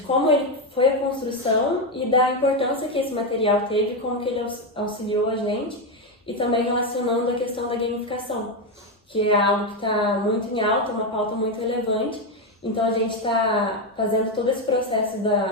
como ele foi a construção e da importância que esse material teve, como que ele auxiliou a gente, e também relacionando a questão da gamificação, que é algo que está muito em alta, uma pauta muito relevante. Então a gente está fazendo todo esse processo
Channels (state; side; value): normal; both; correlation 0.08